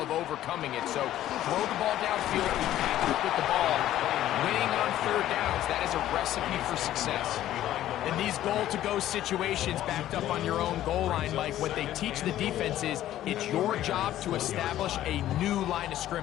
overcoming it. So throw the ball downfield, pass it with the ball. Winning on third downs, that is a recipe for success. In these goal-to-go situations backed up on your own goal line, Mike, what they teach the defense is it's your job to establish a new line of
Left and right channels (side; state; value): right; quieter; 13.0 dB